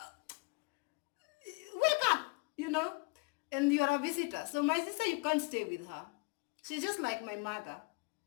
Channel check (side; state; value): right; quieter; 28.7 dB